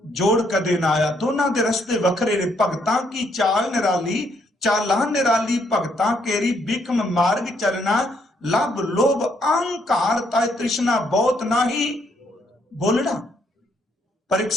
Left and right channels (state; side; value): normal; both; correlation 0.72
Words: ਜੋੜ ਕਦੇ ਨਾ ਆਇਆ। ਦੋਨਾਂ ਦੇ ਰਸਤੇ ਵੱਖਰੇ ਨੇ। ਭਗਤਾਂ ਕੀ ਚਾਲ ਨਿਰਾਲੀ, ਚਾਲਾਂ ਨਿਰਾਲੀ ਭਗਤਾਂ ਕੇਰੀ, ਬਿਕਮ ਮਾਰਗ ਚਲਣਾ ਲਭ ਲੋਭ ਅਹੰਕਾਰ ਤਾਇ ਤ੍ਰਿਸ਼ਨਾ ਬਹੁਤ ਨਹੀਂ ਬੋਲਣਾ। ਪਰ ਇੱਕ